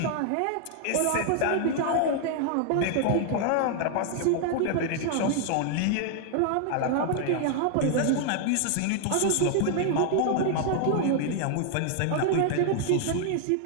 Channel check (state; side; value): different; both; correlation 0.00